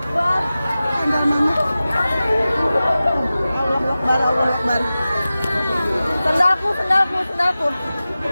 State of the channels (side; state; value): both; inverted; correlation -0.95